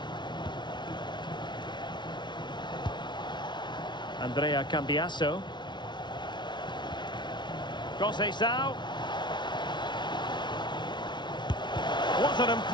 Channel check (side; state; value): right; late; 0.22 ms